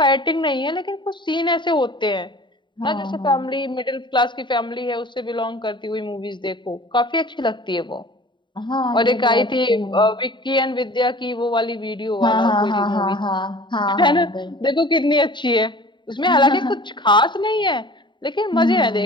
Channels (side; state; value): right; late; 0.23 ms